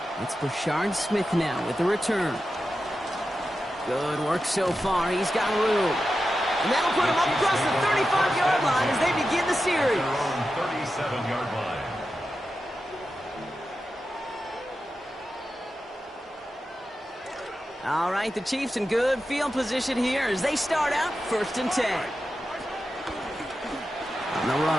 It's Brashard Smith now with the return. Good work so far. He's got room. And that'll put him up across the 35-yard line as they begin the series. 37-yard line. All right, the Chiefs in good field position here as they start out 1st and 10. On the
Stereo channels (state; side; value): normal; both; correlation 0.91